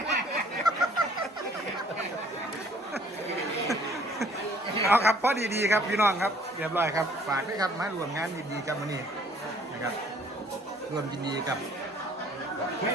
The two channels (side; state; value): both; normal; correlation 0.58